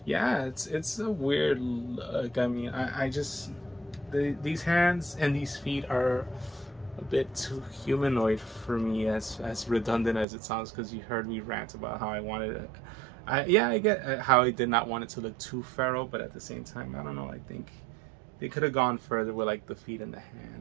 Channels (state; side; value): drops out; left; at 10.2 s